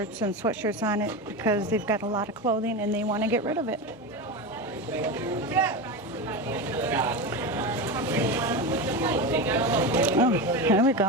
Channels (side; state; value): both; normal; correlation 0.20